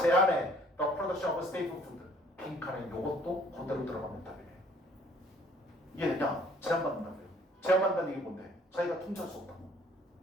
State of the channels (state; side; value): normal; both; correlation 0.58